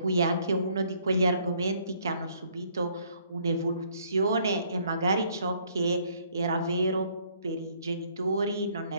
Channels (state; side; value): inverted; both; correlation -0.64